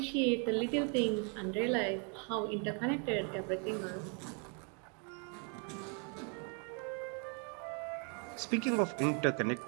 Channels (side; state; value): left; quieter; 38.9 dB